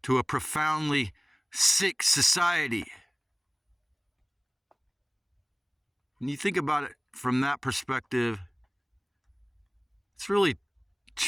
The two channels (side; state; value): both; identical; correlation 1.00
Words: to a profoundly sick society. When you think about it from that perspective, it's really